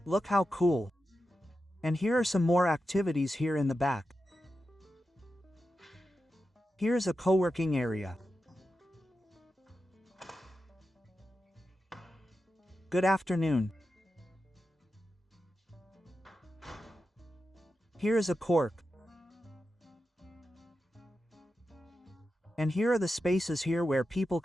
Look how cool. And here are some more activities here in the back. Here's a co-working area. Good afternoon. Here is a cork. And here are the spaces here where people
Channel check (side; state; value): both; normal; correlation 0.90